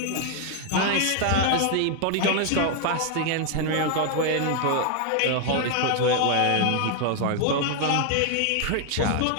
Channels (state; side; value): different; both; correlation 0.00